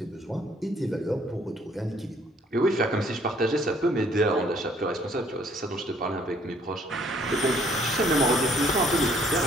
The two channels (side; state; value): both; normal; correlation 0.62